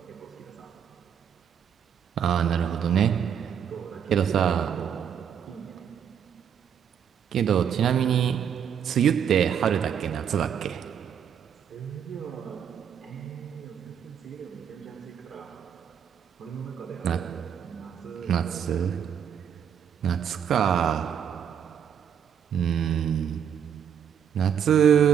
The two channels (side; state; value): left; quieter; 8.4 dB